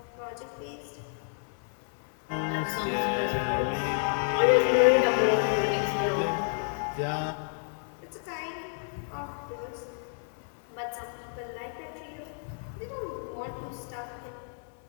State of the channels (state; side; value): silent; right; 57 dB below the other